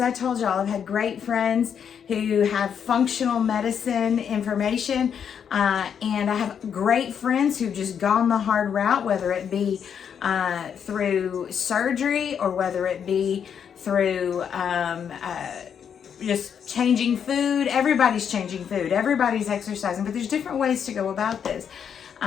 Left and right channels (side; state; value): right; quieter; 7.8 dB